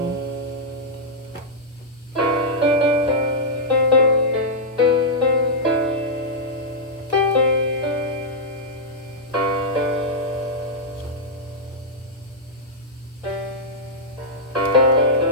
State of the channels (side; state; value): both; normal; correlation -0.08